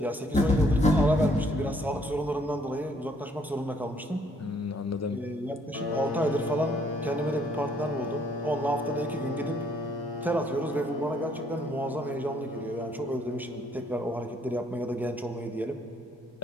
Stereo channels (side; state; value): both; normal; correlation 0.66